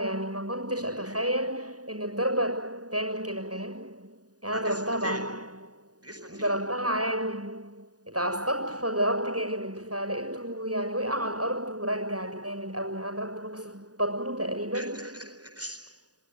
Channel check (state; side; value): late; left; 0.68 ms